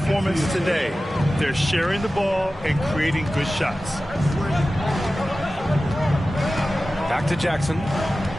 today. They're sharing the ball and creating good shots. Back to Jackson.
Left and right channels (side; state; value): both; normal; correlation 0.95